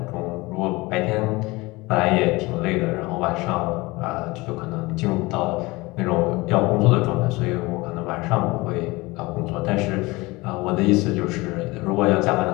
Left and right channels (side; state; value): right; quieter; 22.5 dB